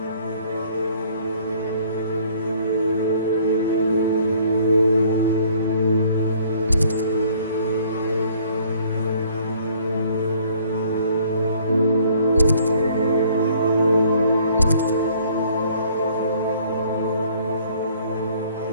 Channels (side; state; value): both; inverted; correlation -0.59